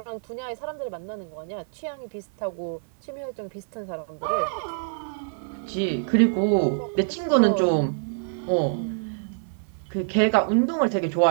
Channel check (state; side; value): silent; left; 61 dB below the other